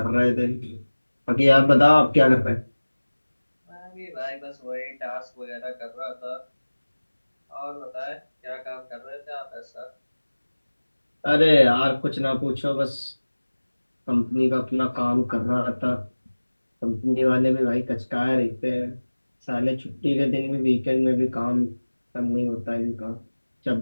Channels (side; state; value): both; inverted; correlation -1.00